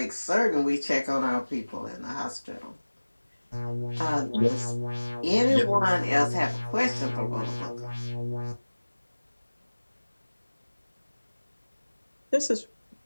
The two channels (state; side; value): inverted; both; correlation -1.00